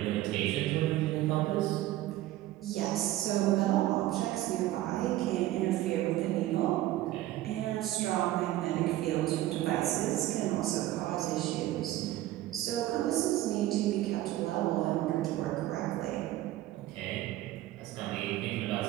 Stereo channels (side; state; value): left; quieter; 15.1 dB